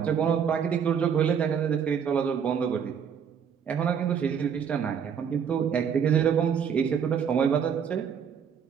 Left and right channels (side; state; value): left; quieter; 7.5 dB